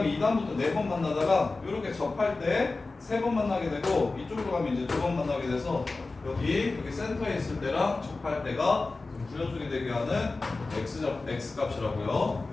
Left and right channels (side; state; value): right; quieter; 3.6 dB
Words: 2단부터 4번 만나다가 이렇게 접할 때 3번 만나게 되고 이쪽으로 가면 이제 2번 만나게 돼서 여기 센터에 있을 때랑 접할 때가 부여쪽이 되게 하는 x 값이라고요.